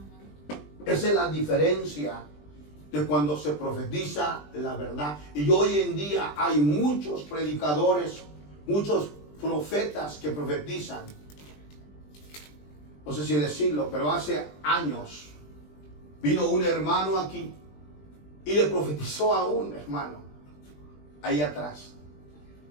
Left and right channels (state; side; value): late; right; 20 ms